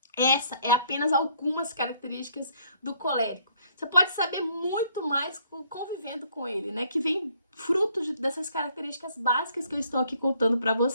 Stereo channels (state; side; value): inverted; both; correlation -0.64